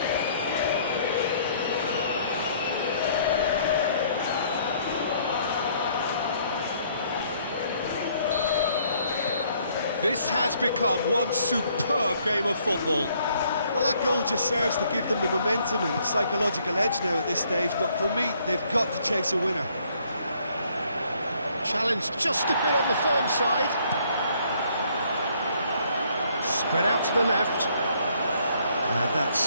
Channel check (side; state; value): both; inverted; correlation -0.65